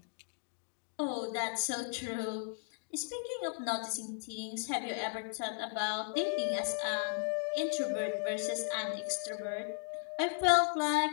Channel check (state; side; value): silent; right; digital silence